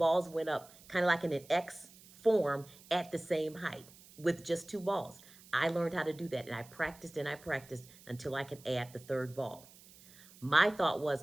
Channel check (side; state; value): right; noise; hiss, 22 dB below the sound